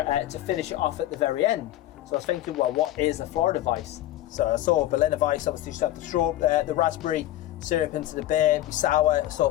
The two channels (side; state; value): right; quieter; 14.4 dB